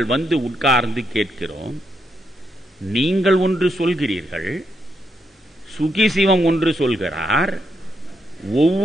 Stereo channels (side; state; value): both; normal; correlation 0.80